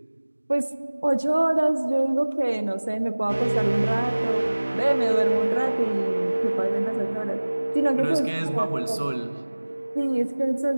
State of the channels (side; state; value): both; inverted; correlation -1.00